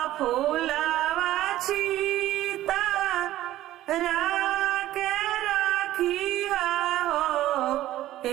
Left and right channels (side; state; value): left; quieter; 14.3 dB